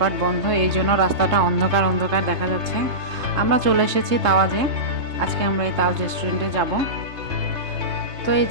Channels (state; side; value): late; left; 3.2 ms